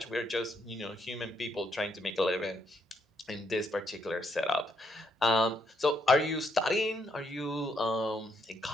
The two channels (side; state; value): both; normal; correlation 0.75